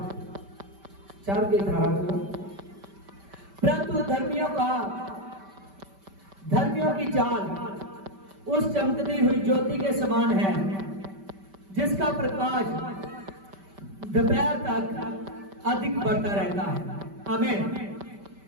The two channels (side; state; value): left; late; 5.1 ms